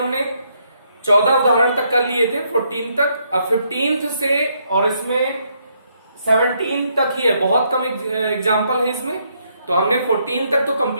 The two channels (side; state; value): both; inverted; correlation -0.74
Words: 14 उदाहरण तक कर लिए थे, 14 तक। अब 15th से और इसमें 17 तक ही है, बहुत कम एग्जाम्पल है इसमें। तो हमने 14 तक तो